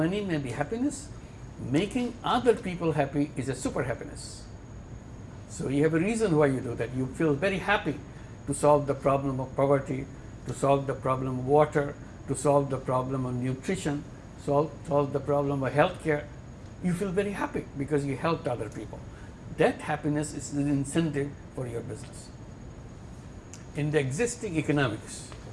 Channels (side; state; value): both; identical; correlation 1.00